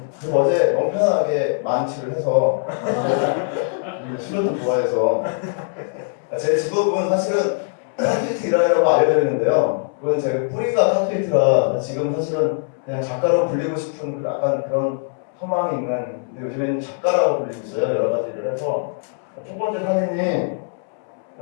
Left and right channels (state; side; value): silent; right; 65 dB below the other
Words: 그래서 어제 너무 편안하게 만취를 해서 술을 좀 좋아해서 제 직업은 사실은 타투이트 일하려고 알려져 있는데요. 그건 제 뿌리가 타투이트라 지금 사실은 그냥 작가로 불리고 싶은 약간 그런 소망이 있는, 근데 요즘에는 작가라고 불리고 있어요. 여러 가지 일을 해서. 첫 번째 사진이